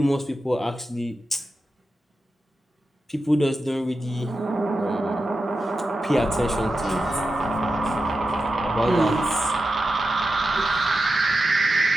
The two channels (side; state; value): both; normal; correlation 0.90